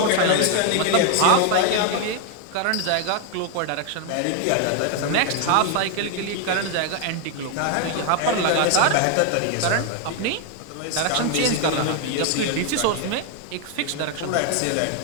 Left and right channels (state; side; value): different; both; correlation 0.01